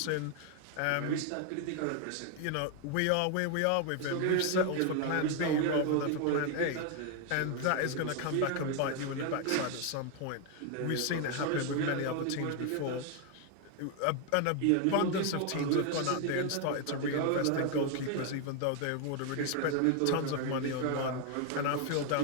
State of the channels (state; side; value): different; both; correlation 0.01